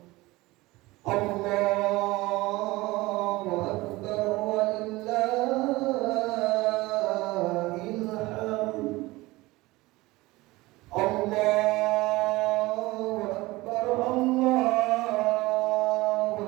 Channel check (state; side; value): quieter; left; 20.4 dB